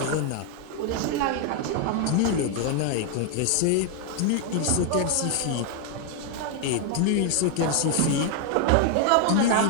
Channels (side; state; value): both; different; correlation 0.00